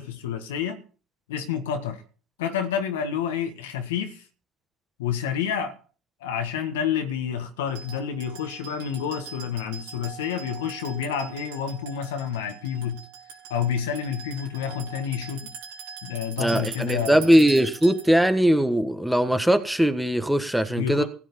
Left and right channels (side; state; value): both; normal; correlation 0.66